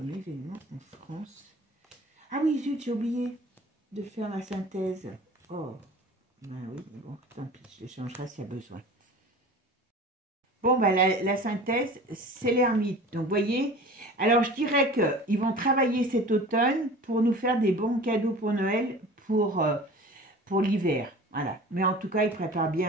événement en France? Ah oui, zut, j'ai oublié de faire la synthèse. Oh, ben oui, mais bon, tant pis, je les changerai s'il y a besoin. Bon, ben la synthèse, c'est l'ermite. Donc, vous voyez, alors je dirais qu'ils vont travailler cet automne pour nous faire des bons cadeaux pour Noël, pour l'hiver. Voilà. Mais en tout cas, ils préparent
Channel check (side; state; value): both; normal; correlation 0.40